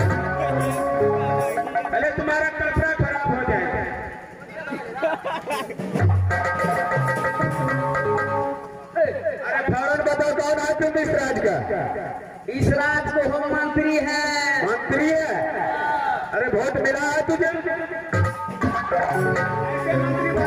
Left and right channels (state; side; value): identical; both; correlation 1.00